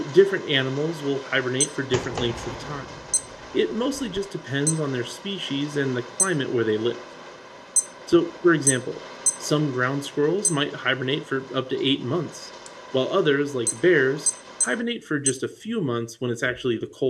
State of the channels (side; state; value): both; identical; correlation 1.00